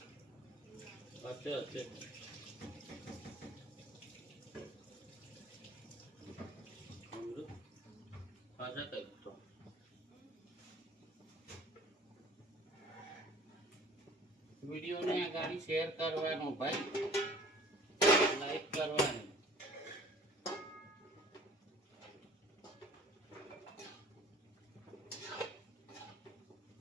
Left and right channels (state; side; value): normal; both; correlation 0.49